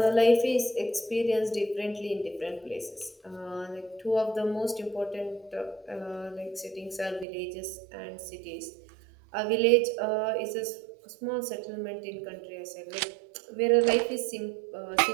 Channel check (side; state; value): left; drops out; at 7.2 s